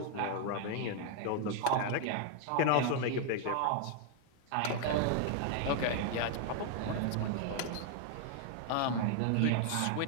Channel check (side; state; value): both; different; correlation 0.00